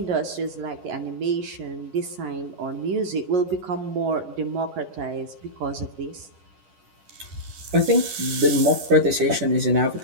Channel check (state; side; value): late; left; 11 ms